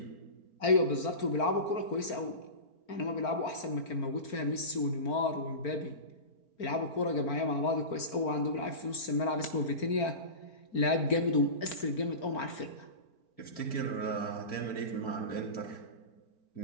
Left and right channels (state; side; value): late; right; 4.4 ms